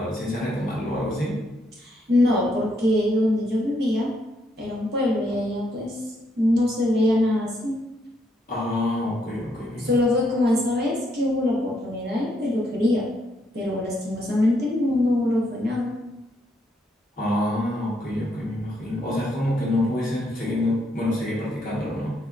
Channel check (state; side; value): normal; both; correlation 0.75